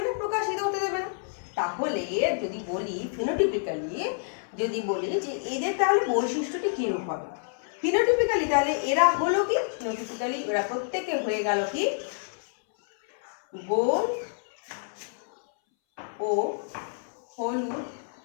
না, প্রকাশিত হতে দেবে না। তাহলে যদি বলি ফিনোটিপিক্যালি, যদি বলি যে এদের তাহলে বৈশিষ্ট্যটি কিরূপ হবে, ফিনোটিপিক্যালি তাহলে এরা হলো কি, ফিনোটিপিক্যালি এরা প্রত্যেকে হয়ে গেল কি গোল ও হলুদ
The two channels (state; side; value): silent; right; 59 dB below the other